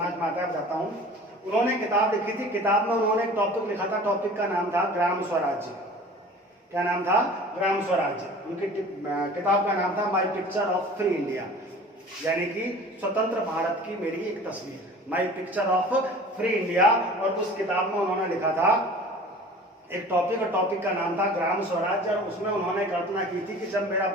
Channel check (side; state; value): both; normal; correlation 0.43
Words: में आता है बताता हूं। उन्होंने किताब लिखी थी, किताब में उन्होंने एक टॉपिक लिखा था, टॉपिक का नाम था ग्राम स्वराज्य। क्या नाम था? ग्राम स्वराज्य। उनकी किताब का नाम था my picture of free India, यानी कि स्वतंत्र भारत की मेरी एक तस्वीर, my picture of free India. और उस किताब में उन्होंने लिखा था एक टॉपिक, और टॉपिक का नाम था ग्राम स्वराज्य। और उसमें उन्होंने कल्पना की थी कि जब मेरा